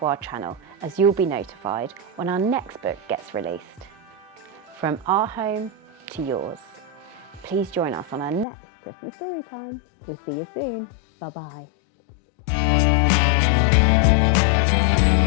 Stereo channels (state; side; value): drops out; right; at 8.5 s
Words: our channel, as you'll be notified when our next book gets released. From our home to yours. Please join us on our next Christmas story time. We'll see you soon. Bye bye.